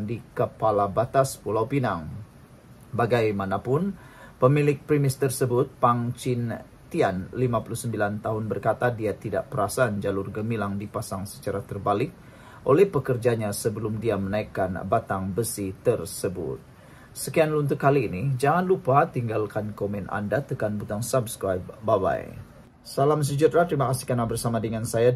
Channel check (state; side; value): identical; both; correlation 1.00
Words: di Kepala Batas Pulau Pinang. Bagaimanapun, pemilik premis tersebut, Pang Chin Tian, 59 tahun, berkata dia tidak perasan jalur gemilang dipasang secara terbalik oleh pekerjanya sebelum dia menaikkan batang besi tersebut. Sekian untuk kali ini. Jangan lupa tinggalkan komen Anda, tekan butang subscribe. Bye-bye. Salam sejahtera, terima kasih karena bersama dengan saya